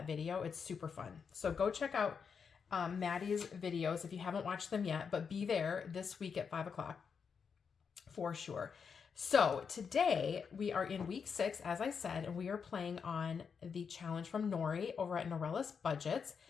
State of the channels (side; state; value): right; quieter; 6.2 dB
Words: video. It's super fun. So go check out Maddie's videos if you haven't watched them yet, but be there this week at 5 o'clock for sure. So today we are in week 6, as I said, and we are playing on the challenge from Nori over at Norelis Budgets,